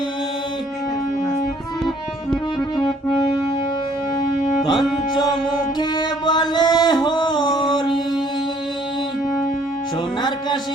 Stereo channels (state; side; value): normal; both; correlation 0.61